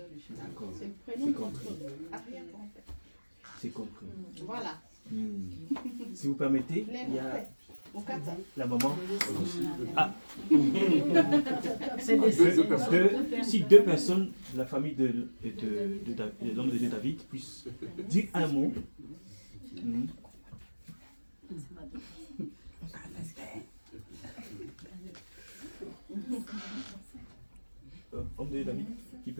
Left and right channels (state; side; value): inverted; both; correlation -1.00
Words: D'accord. C'est le prénom de notre arrière-grand-père. C'est compris. Voilà. Si vous permettez, il y a Okata. la maman. Ah. Si deux personnes de la famille de l'homme de Dieu David puissent dire un mot. Homme de Dieu David, qui